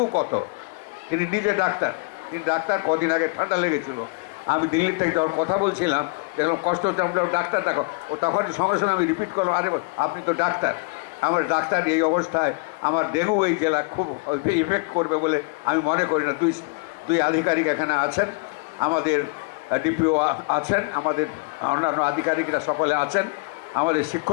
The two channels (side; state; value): right; quieter; 30.4 dB